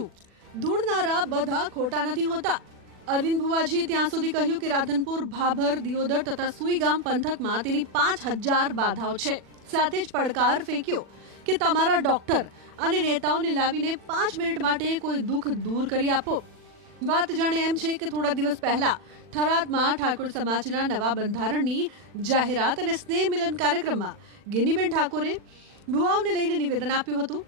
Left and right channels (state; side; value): late; left; 40 ms